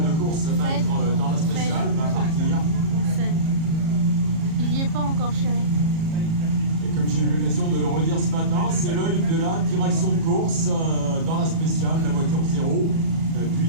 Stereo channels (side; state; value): left; late; 37 ms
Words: course va être dans la spéciale, va partir. Il n'y est pas encore, chérie. Et comme j'ai eu l'occasion de le redire ce matin, c'est l'œil de la direction de course dans la spéciale, la voiture 0,